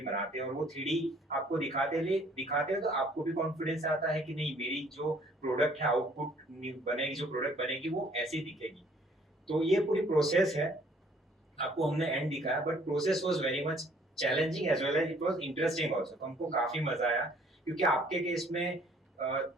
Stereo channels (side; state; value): both; normal; correlation 0.60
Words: बनाते हैं, और वो 3D आपको दिखाते हैं तो आपको भी कॉन्फिडेंस आता है कि नहीं, मेरी जो प्रोडक्ट है, आउटपुट बनेगी, जो प्रोडक्ट बनेगी वो ऐसी दिखेगी। तो ये पूरी प्रोसेस है, आपको हमने एंड दिखाया, but process was very much challenging as well as it was interesting also. तो हमको काफी मजा आया, क्योंकि आपके केस में